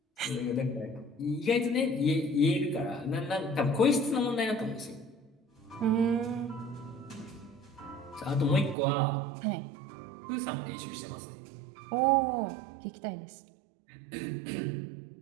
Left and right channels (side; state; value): left; drops out; at 8.8 s